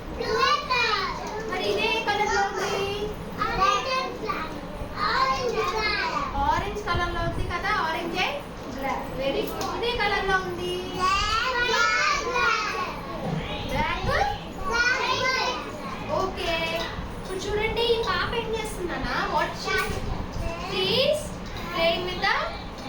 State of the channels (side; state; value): both; identical; correlation 1.00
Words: మరి ఇదే కలర్ లో ఉంది? ఆరెంజ్ కలర్ లో ఉంది కదా, ఆరెంజ్. Very good. ఇదే కలర్ లో ఉంది? ఓకే. ఇప్పుడు చూడండి, ఈ పాప ఏం చేస్తుందన్నా? What she's playing with the